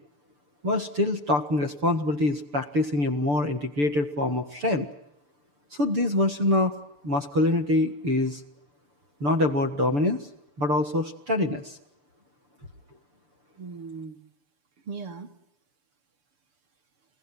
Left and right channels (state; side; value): late; left; 6.9 ms